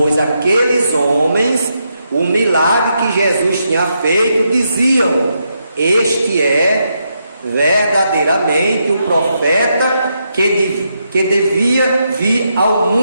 aqueles homens o milagre que Jesus tinha feito, diziam: este é verdadeiramente o profeta que devia vir ao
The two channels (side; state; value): both; inverted; correlation -0.82